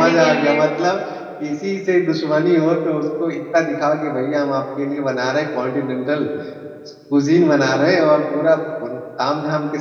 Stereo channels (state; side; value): identical; both; correlation 1.00